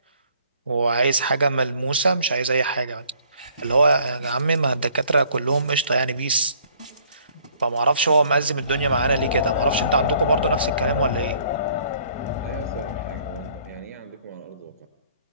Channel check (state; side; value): inverted; both; correlation -0.61